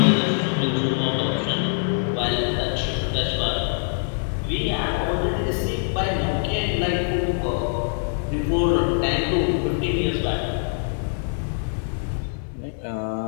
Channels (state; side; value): silent; right; 63 dB below the other